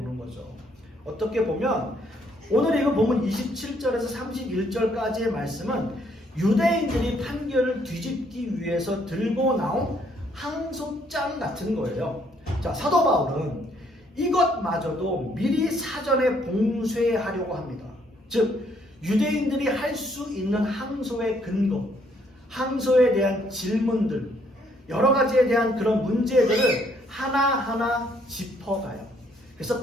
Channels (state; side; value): normal; both; correlation 0.68